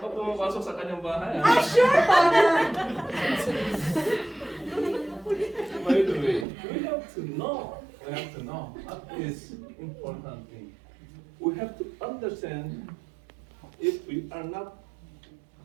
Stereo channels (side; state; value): left; drops out; at 6.5 s